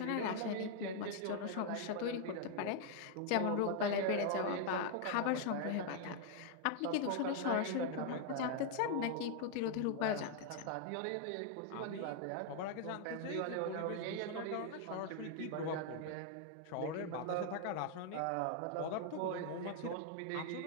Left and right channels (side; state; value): both; different; correlation 0.00